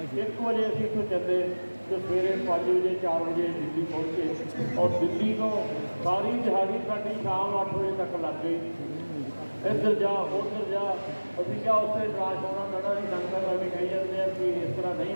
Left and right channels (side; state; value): both; inverted; correlation -1.00